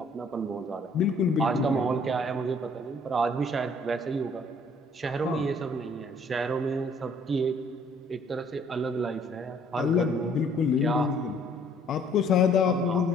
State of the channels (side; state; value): both; normal; correlation 0.60